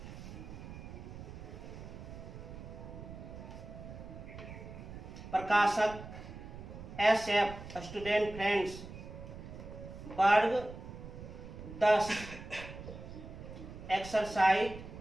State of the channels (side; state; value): right; noise; rumble, 12 dB below the sound